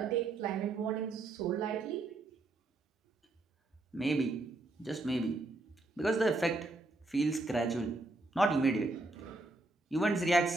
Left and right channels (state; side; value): quieter; left; 3.0 dB